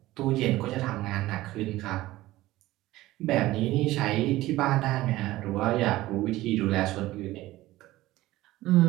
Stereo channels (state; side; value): quieter; left; 17.0 dB